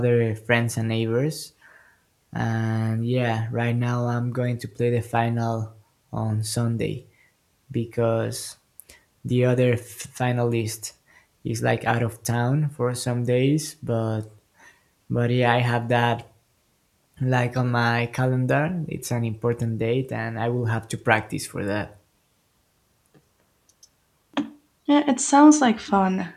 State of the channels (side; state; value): both; identical; correlation 1.00